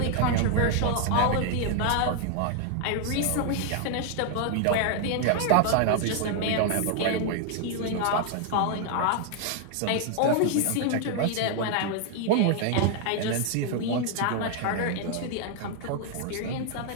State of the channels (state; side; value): different; both; correlation 0.00